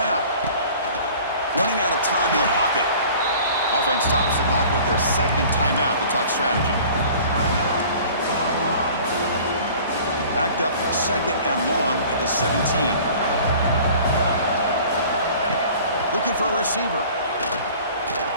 Running out of time in the pocket. Offense stops the clock with their second timeout to talk strategy. Backed up 2nd and long at the 17. Looking for a receiver.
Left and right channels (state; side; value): inverted; both; correlation -0.46